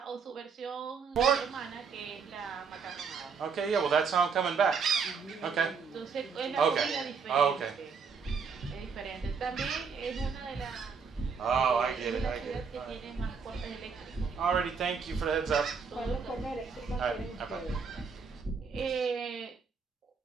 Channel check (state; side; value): quieter; left; 5.6 dB